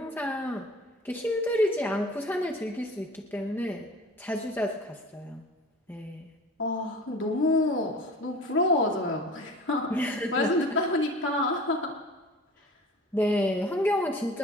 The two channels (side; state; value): both; normal; correlation 0.41